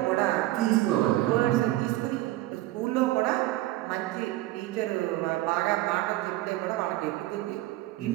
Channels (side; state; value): left; quieter; 16.6 dB